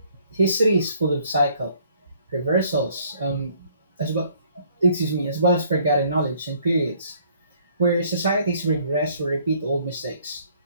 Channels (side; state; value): both; inverted; correlation -0.62